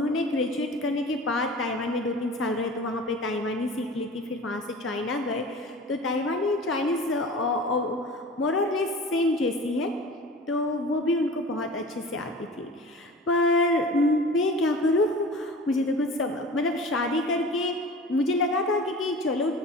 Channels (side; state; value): both; normal; correlation 0.38